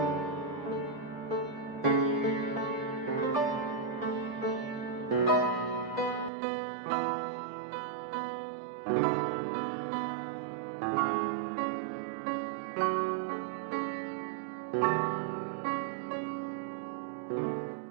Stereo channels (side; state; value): left; drops out; at 6.3 s